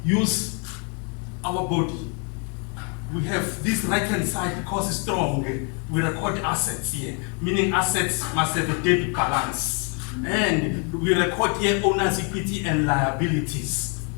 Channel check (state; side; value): quieter; right; 36.9 dB